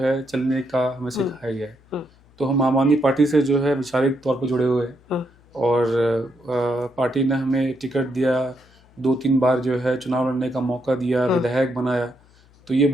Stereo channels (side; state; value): left; noise; hum, 29 dB below the sound